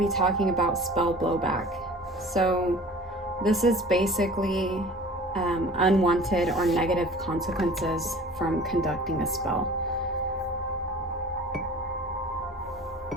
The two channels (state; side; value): normal; both; correlation 0.43